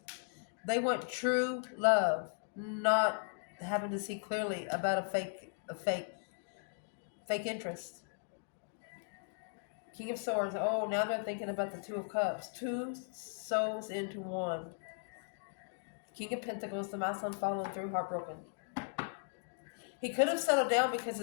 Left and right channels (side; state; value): right; silent; digital silence